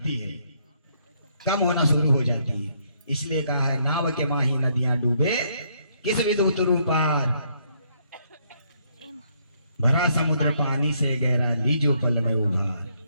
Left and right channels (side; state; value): both; inverted; correlation -0.71